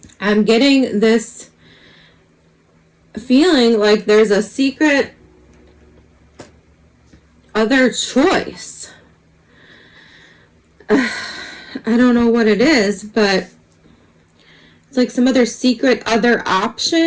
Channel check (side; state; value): both; identical; correlation 1.00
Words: I'm getting this feeling like there's a secret other choice. I don't know what it is, but It's like some other secret other